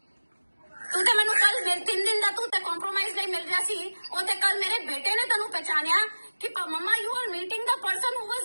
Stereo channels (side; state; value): both; inverted; correlation -1.00